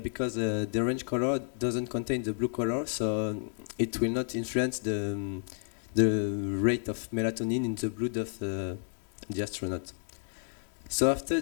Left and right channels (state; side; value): silent; right; digital silence